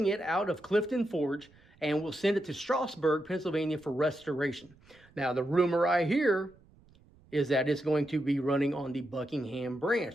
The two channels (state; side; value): noise; right; rumble, 28 dB below the sound